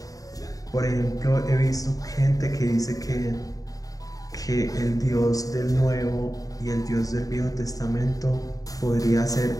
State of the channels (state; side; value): late; right; 0.17 ms